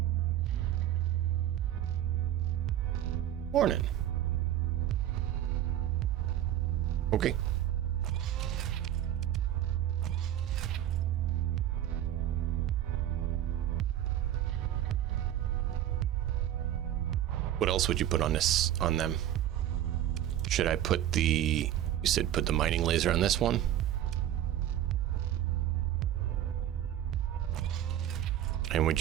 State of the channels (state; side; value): quieter; left; 11.9 dB